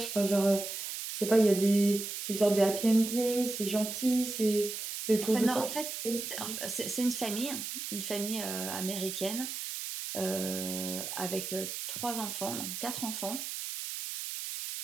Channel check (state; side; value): noise; right; hiss, 6 dB below the sound